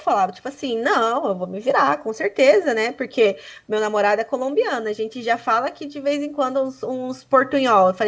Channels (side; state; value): both; identical; correlation 1.00